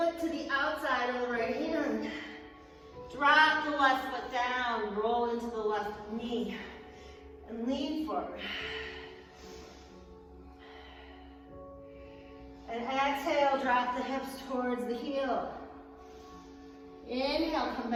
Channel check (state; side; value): identical; both; correlation 1.00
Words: to the outside of the right hand. Drop the left foot down. Roll into the left knee. And lean forward. And exhale, drop the hips towards the heel. Inhale, come